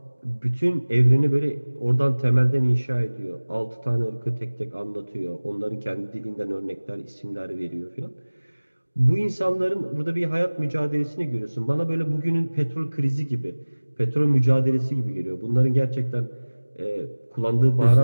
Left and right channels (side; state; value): both; inverted; correlation -1.00